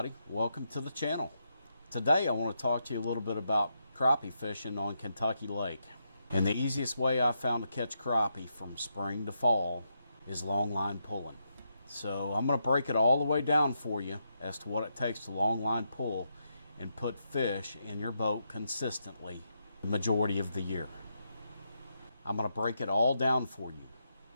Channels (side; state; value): both; inverted; correlation -0.82